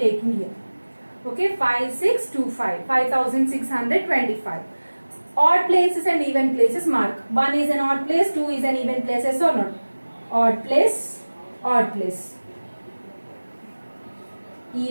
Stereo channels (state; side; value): inverted; both; correlation -1.00